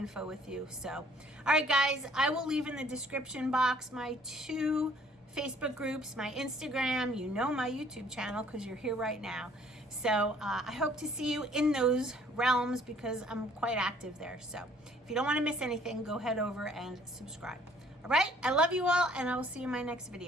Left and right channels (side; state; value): both; normal; correlation 0.59